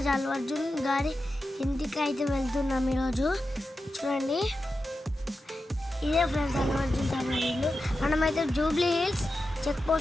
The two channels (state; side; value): normal; both; correlation 0.91